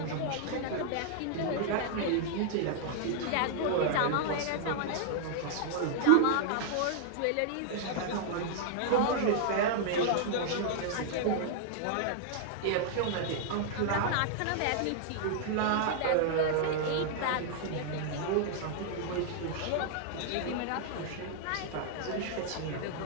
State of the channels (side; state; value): both; different; correlation -0.01